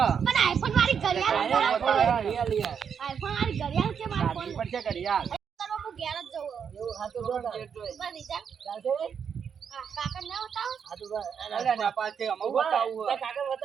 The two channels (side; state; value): left; quieter; 7.2 dB